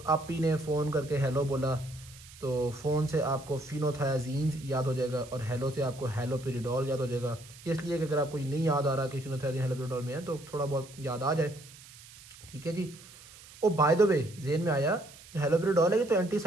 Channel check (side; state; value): right; noise; hiss, 20 dB below the sound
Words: आप ही ने फ़ोन करके हेलो बोला तो फ़ोन से आपको फिनोथायाजीन्स याद हो जाएगा और हेलो से आपको हेलोपेरिडोल याद हो जाएगा। ये इसलिए कि अगर आपको ये नहीं याद आ रहा कि फिनोथायाजीन हेलोपेरिडोल में है तो थोड़ा बहुत याद आ जाए। ठीक है जी। ओ बाय द वे जेन में आया, हेलोपेरिडोल है ये तो